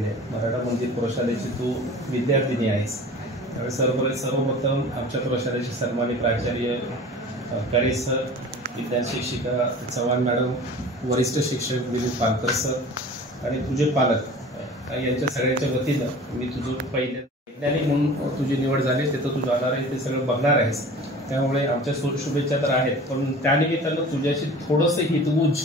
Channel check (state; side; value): normal; both; correlation 0.41